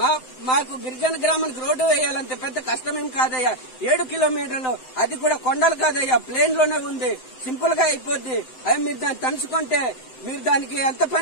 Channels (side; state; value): right; late; 7.8 ms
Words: మాకు గిరిజన గ్రామానికి రోడ్డు వేయాలంటే పెద్ద కష్టమేం కాదయ్యా. 7 కిలోమీటర్లు, అది కూడా కొండలు కాదయ్యా, ప్లేన్ లోనే ఉంది, సింపుల్ గా అయిపోద్ది. అవి మీరు దాన్ని తలుచుకుంటే మీరు దానికి ఎంత